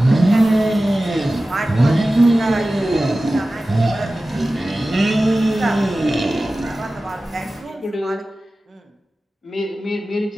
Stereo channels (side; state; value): both; normal; correlation 0.96